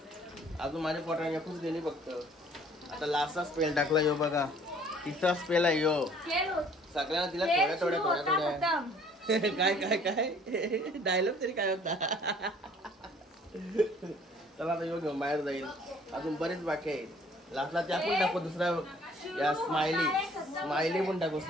अजून माझ्या पोटाने एकूच गेली फक्त. आता लास्टचा स्पेल टाकला. यो बघा तिसरा स्पेल आहे यो. सगळ्यांना तिला थोड्या काय काय काय डायलॉग तरी काय होता. चला आता यो घेऊन बाहेर जाईल. अजून बरेच बाकी आहे. लास्टला त्या पण टाकू. दुसरा या स्माइली पण टाकू.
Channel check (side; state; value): both; normal; correlation 0.56